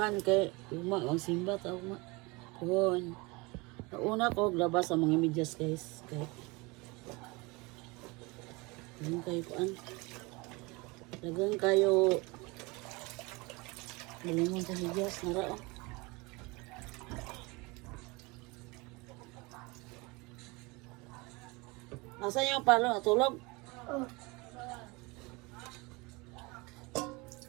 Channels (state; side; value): quieter; left; 25.6 dB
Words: kay ugma ang simba ta ugma. Kun nauna ko labas sa mga medyas guys kay dagang kayo bulingon sa medyas nara oh. Nasaan yung palo natulog?